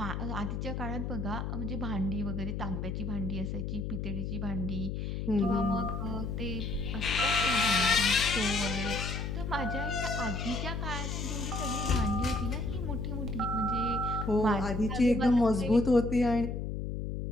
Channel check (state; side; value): noise; left; hum, 3 dB below the sound